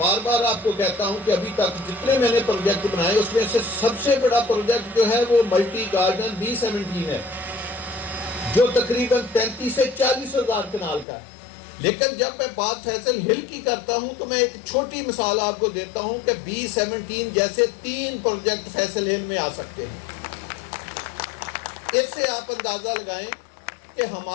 بار آپ کو کہتا ہوں کہ ابھی تک جتنے میں نے پروجیکٹ بنائے اس میں سے سب سے بڑا پروجیکٹ جو ہے وہ ملٹی گارڈن B17 ہے, جو تقریباً 33 سے 40 ہزار کنال کا ہے. لیکن جب میں بات فیصل ہل کی کرتا ہوں تو میں ایک چھوٹی مثال آپ کو دیتا ہوں کہ B17 جیسے 3 پروجیکٹ فیصل ہل میں آ سکتے ہیں. اس سے آپ اندازہ لگائیں کہ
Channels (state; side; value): drops out; right; at 11.1 s